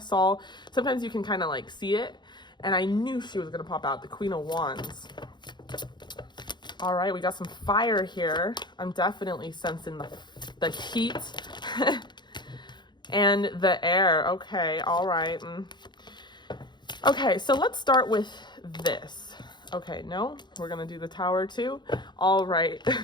saw, sometimes you can kind of like see it. And I knew she was going to pop out. The Queen of Wands. All right. We got some fire here. I'm definitely sensing the heat and the air. Okay. All right. Okay, so let's start with this. Okay, no, we're gonna do the Tower too. All right.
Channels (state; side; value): late; right; 0.21 ms